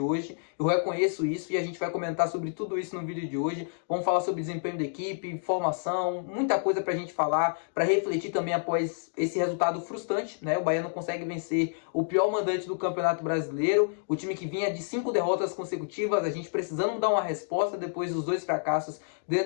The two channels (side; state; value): right; silent; digital silence